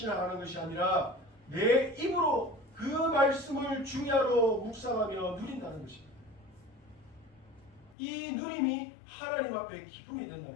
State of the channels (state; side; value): drops out; right; at 8.0 s